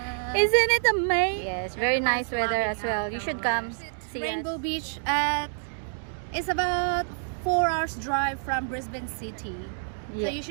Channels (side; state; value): left; silent; digital silence